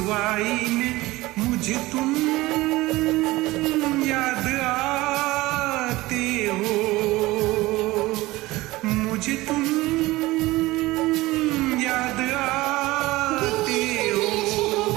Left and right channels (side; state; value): left; quieter; 19.3 dB